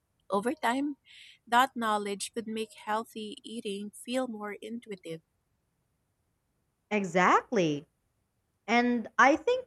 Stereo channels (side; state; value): both; identical; correlation 1.00